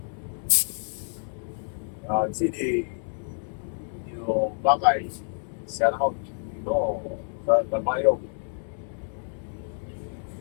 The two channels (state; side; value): silent; right; digital silence